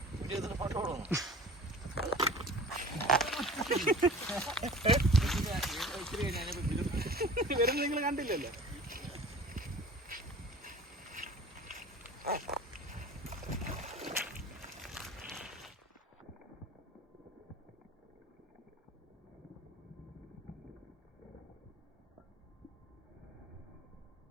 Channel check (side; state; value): both; normal; correlation 0.43